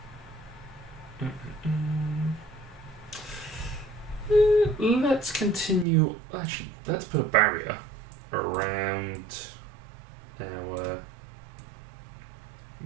Let's continue. Actually, let's put a barrier around our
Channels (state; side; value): drops out; left; at 5.9 s